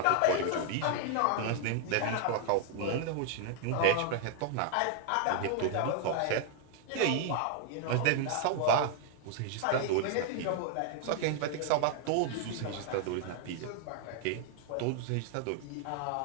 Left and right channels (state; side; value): different; both; correlation 0.00